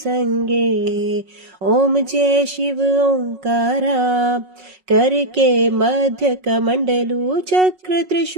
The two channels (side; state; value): left; late; 5.4 ms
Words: ओम जय शिव ओंकारा। करके मध्य कमंडलू चक्र